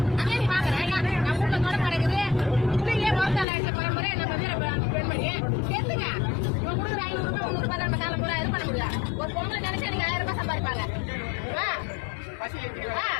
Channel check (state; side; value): drops out; right; at 3.5 s